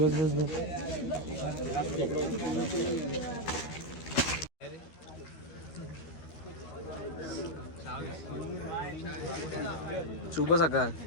बस बस. शुभ सकाळ.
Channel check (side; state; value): right; late; 13 ms